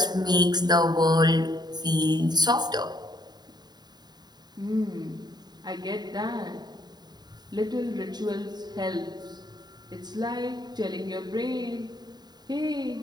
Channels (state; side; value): late; left; 0.20 ms